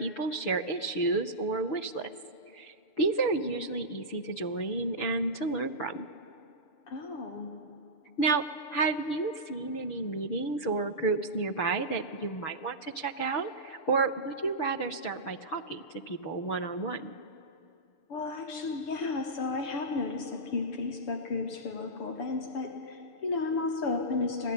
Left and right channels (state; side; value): late; right; 6.8 ms